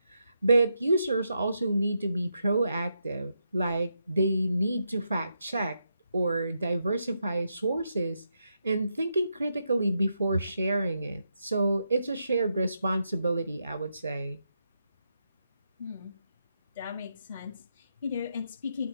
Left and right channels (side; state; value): both; inverted; correlation -0.82